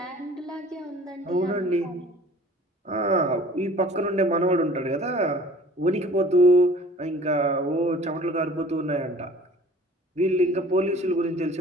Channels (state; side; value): normal; both; correlation 0.49